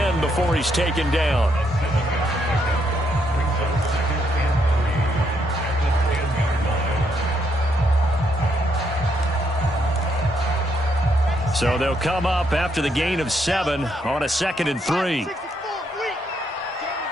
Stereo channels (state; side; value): normal; both; correlation 0.75